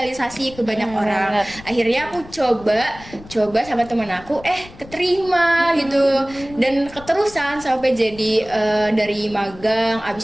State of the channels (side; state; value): left; noise; rumble, 19 dB below the sound